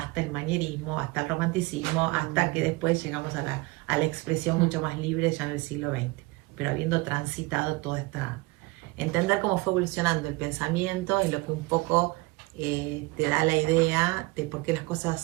el manierismo, hasta el romanticismo, hasta que después llegamos a la expresión mucho más libre ya en el siglo XX, pero habiendo transitado toda esta... Entender cómo fue evolucionando el pensamiento es lo que un poco te da la idea de por qué las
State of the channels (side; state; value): left; quieter; 23.8 dB